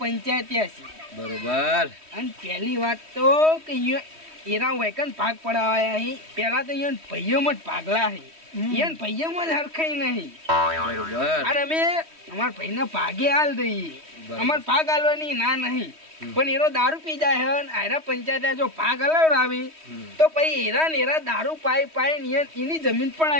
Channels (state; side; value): late; left; 3.1 ms